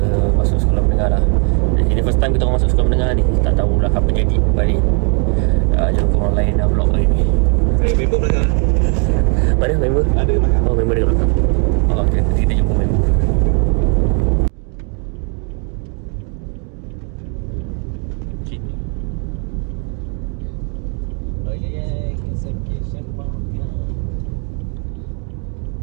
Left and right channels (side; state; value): left; quieter; 39.6 dB